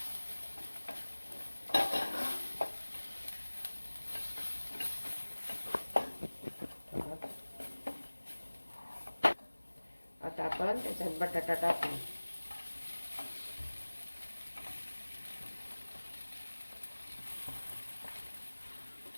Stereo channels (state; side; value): inverted; both; correlation -1.00